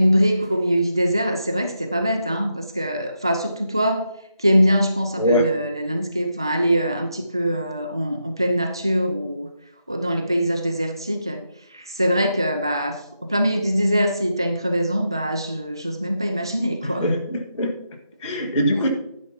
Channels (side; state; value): both; inverted; correlation -0.83